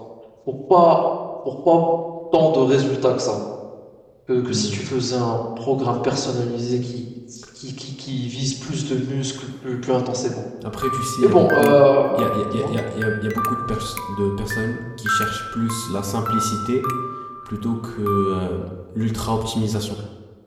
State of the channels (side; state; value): both; identical; correlation 1.00